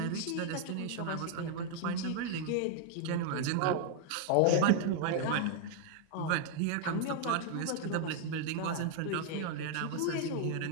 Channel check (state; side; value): different; both; correlation 0.00